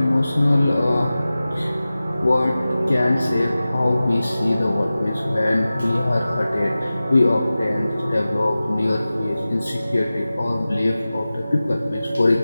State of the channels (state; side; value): inverted; both; correlation -0.96